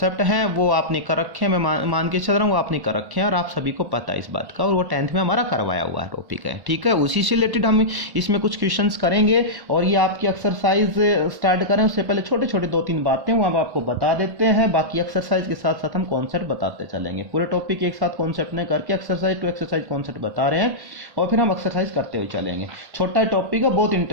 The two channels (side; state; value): left; late; 1.0 ms